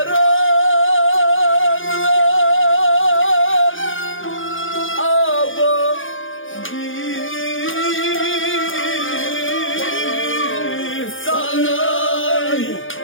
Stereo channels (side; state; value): right; late; 0.58 ms